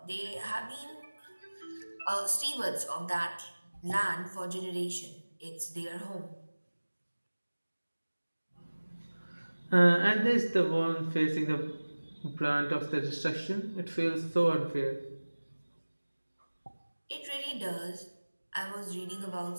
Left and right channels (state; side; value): inverted; both; correlation -1.00